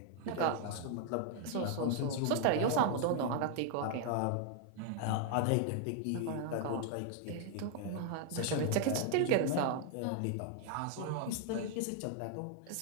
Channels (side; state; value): both; different; correlation 0.00